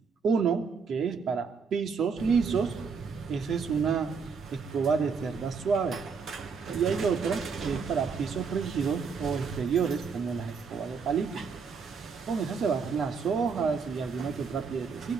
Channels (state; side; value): quieter; left; 5.5 dB